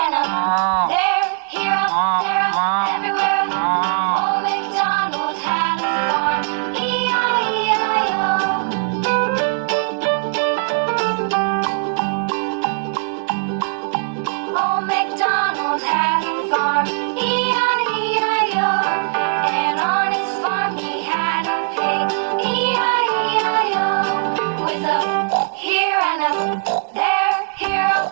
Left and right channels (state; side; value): silent; left; digital silence